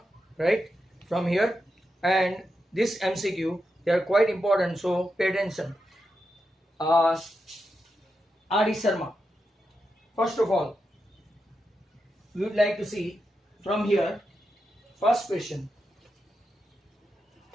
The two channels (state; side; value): normal; both; correlation 0.87